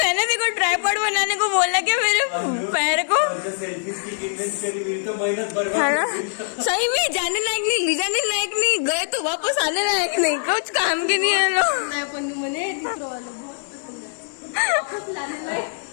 देखो ट्राइपॉड बनाने को बोला कि मेरे पैर को है ना, सही में जाने लायक नहीं, ले जाने लायक नहीं, गए तो वापस आने लायक नहीं, कुछ काम के नहीं है लोग।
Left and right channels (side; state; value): right; silent; 64 dB below the other